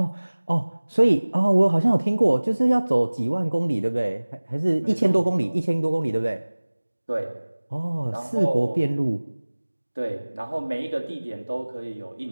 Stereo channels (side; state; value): both; inverted; correlation -1.00